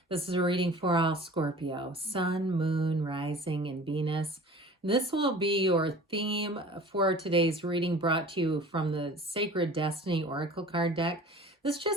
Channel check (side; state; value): both; normal; correlation 0.43